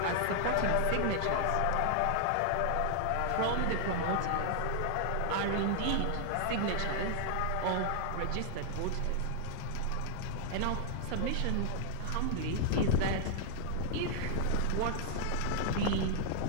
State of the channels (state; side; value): different; both; correlation -0.01